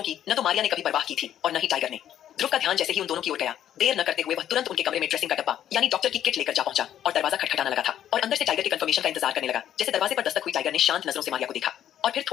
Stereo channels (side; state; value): right; quieter; 10.8 dB